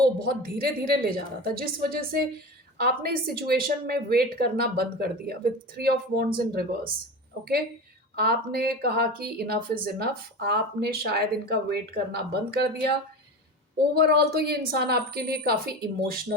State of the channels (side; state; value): both; normal; correlation 0.28